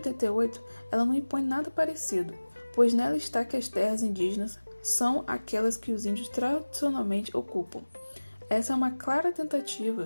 ela não impõe nada parecido, pois nela está que as terras indígenas são aquelas que os índios tradicionalmente ocupam. Essa é uma clara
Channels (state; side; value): inverted; both; correlation -1.00